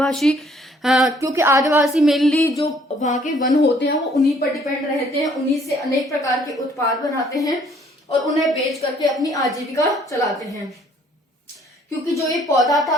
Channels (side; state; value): both; normal; correlation 0.62